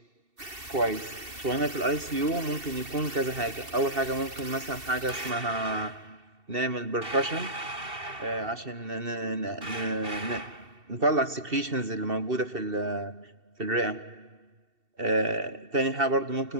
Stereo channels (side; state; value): left; late; 2.7 ms